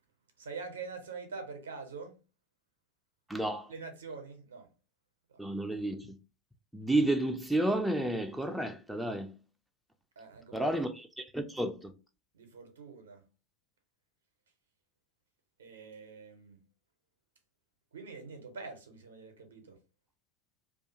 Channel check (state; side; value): normal; both; correlation 0.74